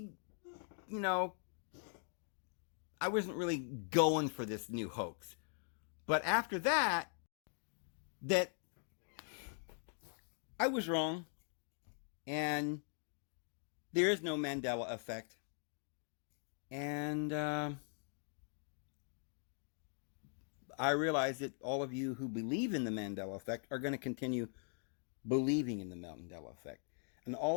going for this new hoax. But after that I was wrong. And there is no Mandela Effect. And I realize that all of you who believe in the Mandela Effect are going to continue believing in the Mandela Effect. And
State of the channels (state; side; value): silent; right; 50 dB below the other